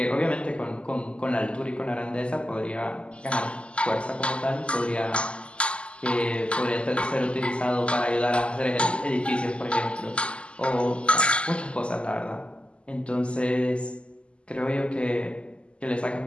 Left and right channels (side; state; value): right; late; 0.054 ms